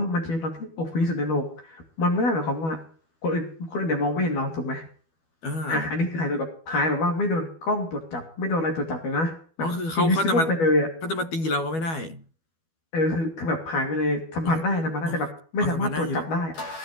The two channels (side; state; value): right; late; 12 ms